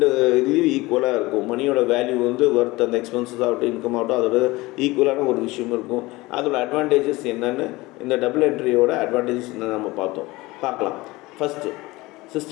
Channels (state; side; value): quieter; right; 21.0 dB